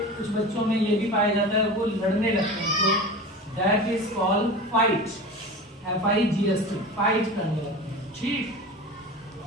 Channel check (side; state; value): both; normal; correlation 0.32